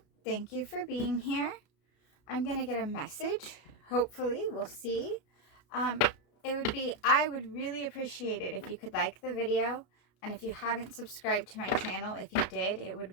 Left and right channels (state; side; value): late; right; 33 ms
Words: thank you for being here. I'm going to get a message. Hopefully, we'll see. Um, I would really appreciate it if you could like the video. And if you haven't subscribed to my channel, if you did, it